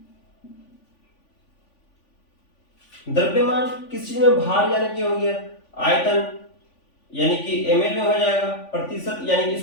द्रव्यमान किस चीज में? भार यानी कि हो गया, आयतन यानी कि ml में हो जाएगा, प्रतिशत यानी कि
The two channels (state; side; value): late; right; 3.5 ms